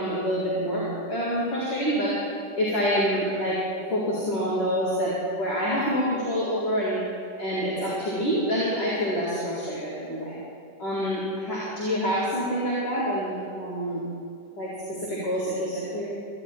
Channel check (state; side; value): late; right; 10 ms